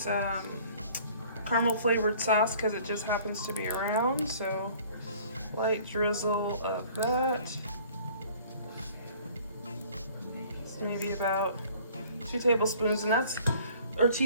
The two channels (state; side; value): inverted; both; correlation -0.53